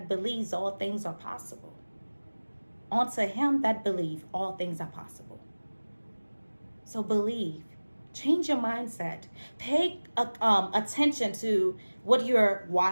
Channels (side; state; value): both; inverted; correlation -1.00